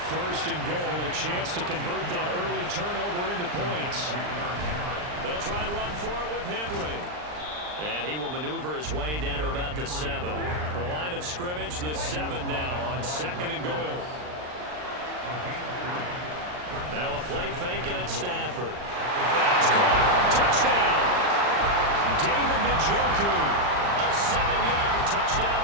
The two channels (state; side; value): late; left; 39 ms